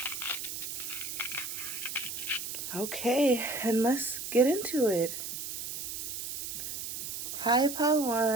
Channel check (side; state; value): right; noise; hiss, 5 dB below the sound